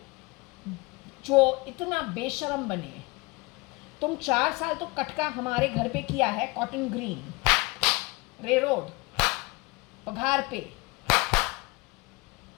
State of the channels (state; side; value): quieter; right; 24.9 dB